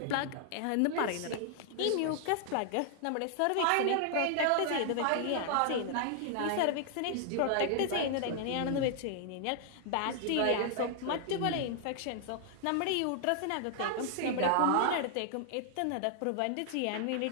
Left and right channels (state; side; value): different; both; correlation 0.00